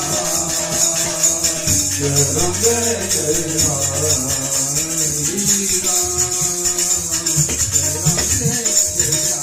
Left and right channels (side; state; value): both; identical; correlation 1.00